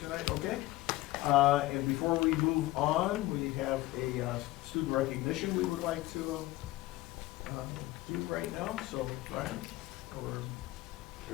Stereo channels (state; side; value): quieter; right; 18.0 dB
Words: tonight? Okay. And before we move on, we have a student recognition we would like to do right now. So, Brian, or